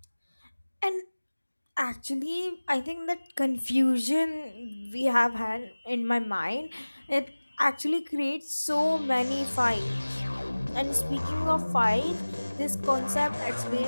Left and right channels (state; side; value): inverted; both; correlation -1.00